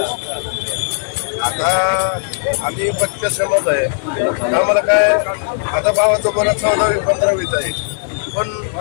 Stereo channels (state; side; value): silent; right; digital silence